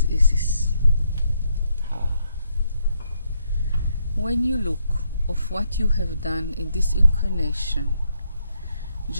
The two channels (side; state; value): both; inverted; correlation -0.77